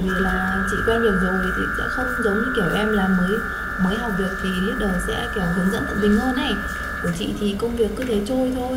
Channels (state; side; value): identical; both; correlation 1.00